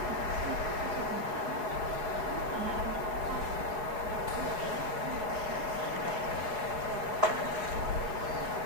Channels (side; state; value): left; late; 4.8 ms